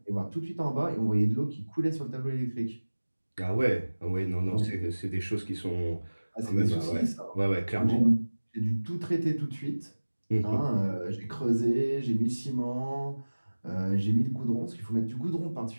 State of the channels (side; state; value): both; inverted; correlation -1.00